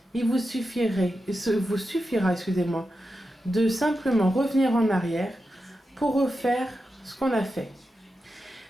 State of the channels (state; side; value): normal; both; correlation 0.89